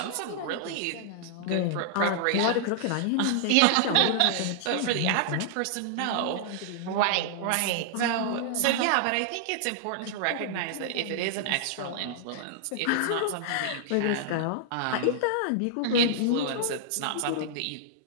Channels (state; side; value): different; both; correlation -0.01